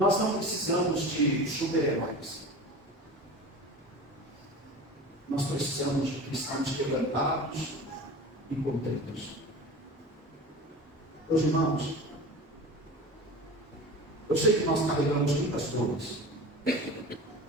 Nós não precisamos de super-heróis. Nós precisamos de cristãos quebrantados e contritos. Meus irmãos, eu sei que nós carregamos muitas dores,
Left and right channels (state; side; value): normal; both; correlation 0.34